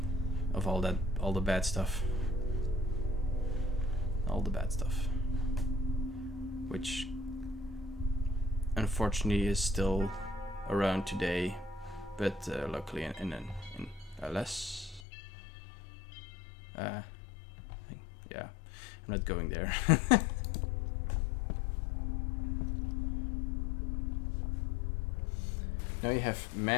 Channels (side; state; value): right; drops out; at 15.0 s